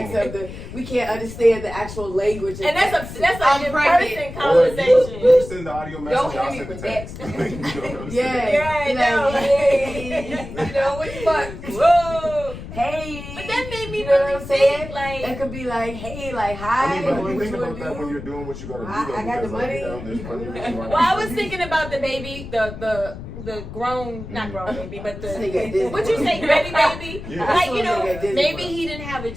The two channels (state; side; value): noise; left; rumble, 11 dB below the sound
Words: of the. We can't understand the actual language. And that's I'm an pregnant. in-person Or conversation. you send the audio message, Don't I'll hit me send the with text. You know what I'm Yeah, saying? Yeah, I Be know. like, hey, you know what the fuck? Whoa, hey. But that made me You know really what I'm saying? think, like, It could be like, hey, like, hi. I mean, but what you think you about wanna that do? when you're doing what you gotta do. Though, I got the because, like, you know, money. there's plenty of reasons why well, I you was can- thinking about the baby, the grown, not grown baby, but This nigga at the, Disney what you World. say, Betty baby? Yeah. Like, you know, This nigga at Disney maybe World. he didn't have a